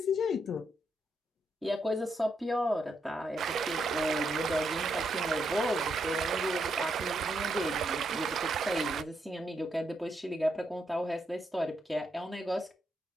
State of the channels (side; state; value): both; normal; correlation 0.79